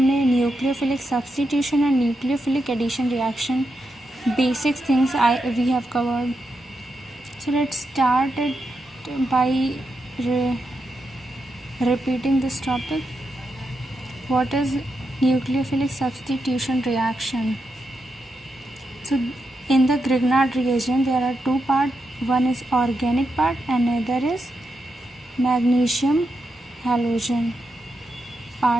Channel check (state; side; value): normal; both; correlation 0.86